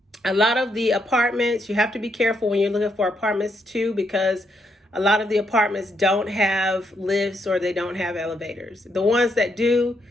A lot of the apartments, you have to be careful when you're looking for apartments too, because a lot of the apartments don't have lifts, or they don't have elevators. The ones that do,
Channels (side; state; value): both; normal; correlation 0.77